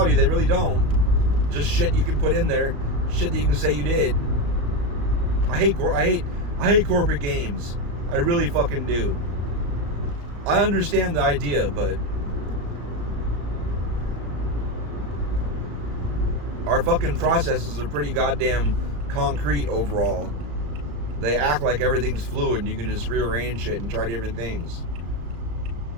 they really don't. Just shit you can put in there. Shit that you can say you did. I hate corporate games. I really fucking do. I understand the idea, but our fucking processes are pretty goddamn concrete overall. They act like everything's fluid and you can just rearrange shit and try different things.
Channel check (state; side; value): late; left; 34 ms